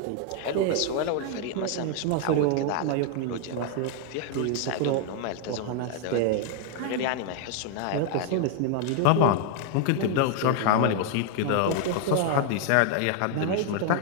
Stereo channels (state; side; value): different; both; correlation 0.00